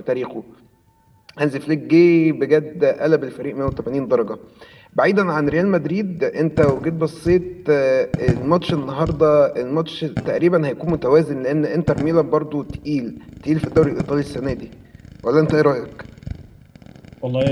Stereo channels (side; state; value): both; identical; correlation 1.00